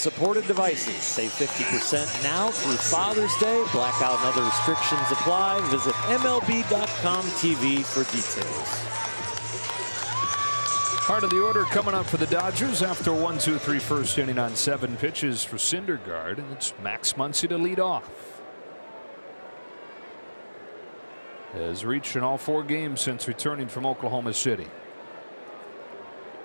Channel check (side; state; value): both; inverted; correlation -1.00